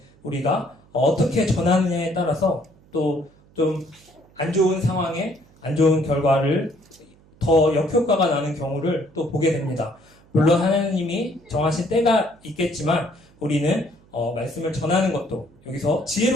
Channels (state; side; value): noise; right; hum, 29 dB below the sound